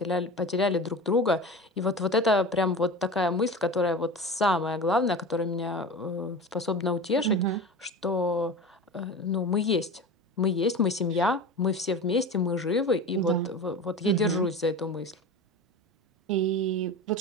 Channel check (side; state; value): both; normal; correlation 0.31